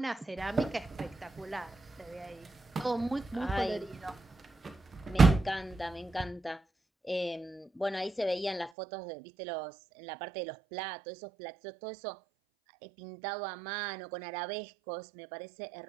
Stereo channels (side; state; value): left; drops out; at 8.7 s